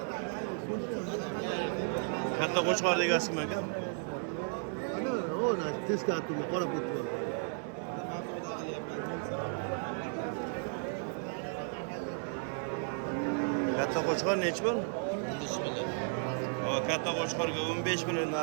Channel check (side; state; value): left; silent; 55 dB below the other